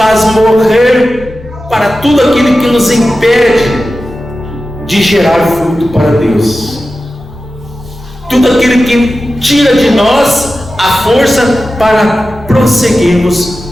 morrer para tudo aquilo que nos impede de gerar fruto para Deus. Tudo aquilo que tira de nós a força para prosseguirmos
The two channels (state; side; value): normal; both; correlation 0.94